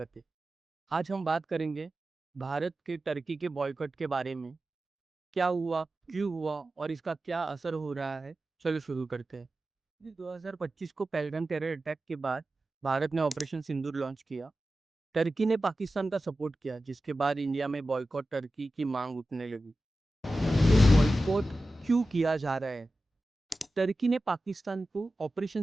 है। आज हम बात करेंगे भारत के टर्की के बॉयकॉट के बारे में। क्या हुआ, क्यों हुआ और इसका क्या असर हो रहा है? चलो शुरू करते हैं। 2025 को पहलगाम टेरर अटैक के बाद भारत ने ऑपरेशन सिंदूर लॉन्च किया। टर्की ने पाकिस्तान का सपोर्ट किया, जिसके बाद इंडिया में बॉयकॉट टर्की की मांग उठने लगी। बॉयकॉट क्यों किया जा रहा है? टर्की ने पाकिस्तान को ऑपरेशन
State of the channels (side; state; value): both; normal; correlation 0.94